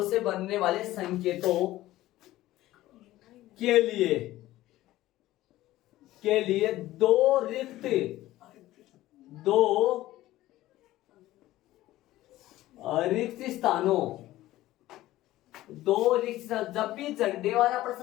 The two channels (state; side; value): quieter; right; 15.8 dB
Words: से बनने वाले संकेतों के लिए 2 रिक्त स्थानों, 2 रिक्त स्थान। जब भी झंडे वाला